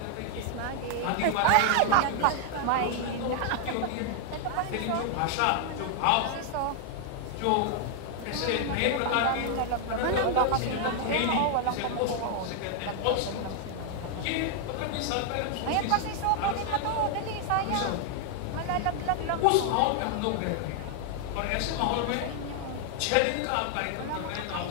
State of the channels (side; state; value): both; different; correlation 0.00